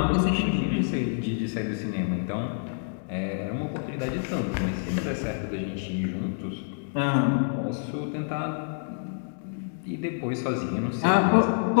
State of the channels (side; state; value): right; silent; digital silence